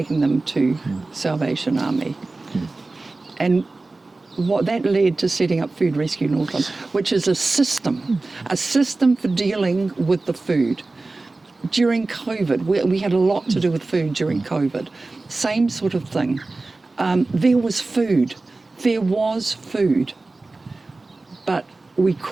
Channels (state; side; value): quieter; left; 3.3 dB